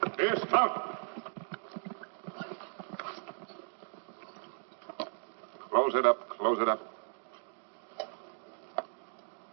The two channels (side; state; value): left; silent; 54 dB below the other